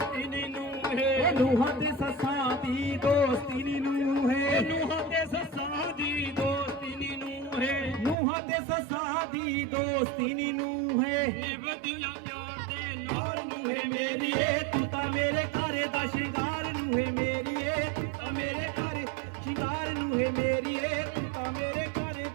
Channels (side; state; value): left; drops out; at 8.2 s